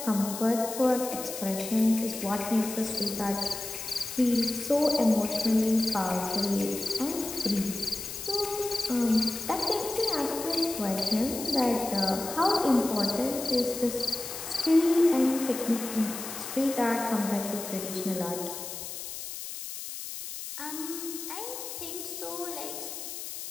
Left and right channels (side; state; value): left; noise; hiss, 8 dB below the sound